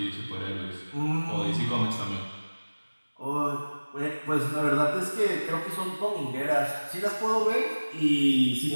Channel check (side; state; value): both; inverted; correlation -1.00